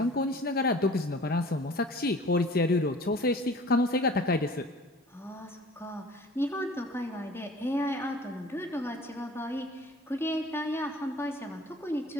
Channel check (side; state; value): both; normal; correlation 0.46